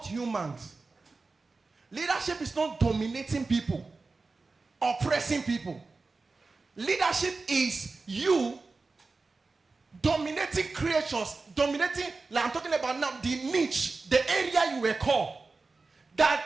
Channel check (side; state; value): left; quieter; 3.9 dB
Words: humans. Leadership is not dominating people, oppressing people. Leadership is you dominating creatures, dominating, like I'm talking about now, the niche, the area you were called. That